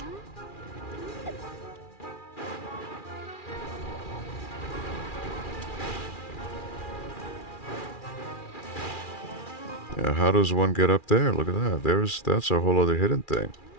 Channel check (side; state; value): right; late; 2.4 ms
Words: Yeah, how does one get up there? Look at that. That's a whole other hidden thing.